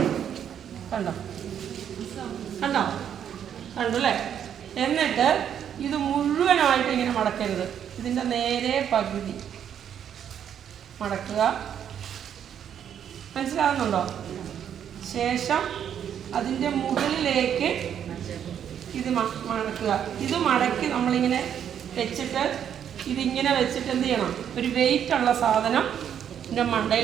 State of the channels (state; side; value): quieter; left; 9.0 dB